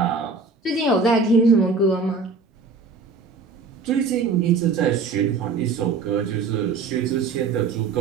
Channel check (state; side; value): quieter; left; 4.6 dB